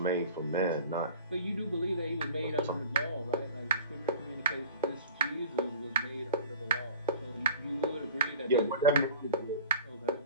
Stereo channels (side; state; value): both; inverted; correlation -0.42